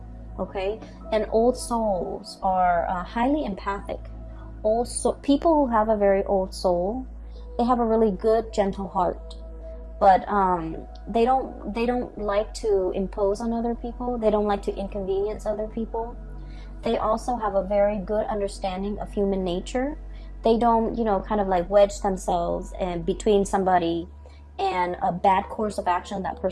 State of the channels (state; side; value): identical; both; correlation 1.00